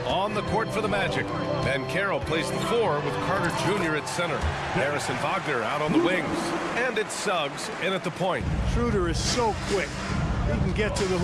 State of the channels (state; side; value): identical; both; correlation 1.00